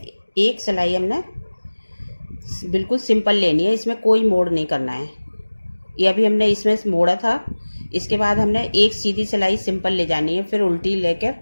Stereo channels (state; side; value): inverted; both; correlation -1.00